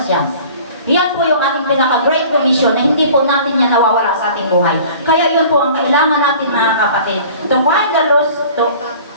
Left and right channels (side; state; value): both; inverted; correlation -0.46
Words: yan. Yan po yung ating pinaka-great commission na hindi po natin yan nawawala sa ating buhay. Kaya yun po ang kailangan natin mga kapatid. To find the